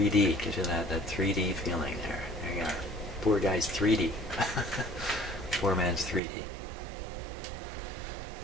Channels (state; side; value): drops out; left; at 6.2 s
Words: gives you that 3D feeling there. There you are. Poor guy's 3D. Poor man's 3D.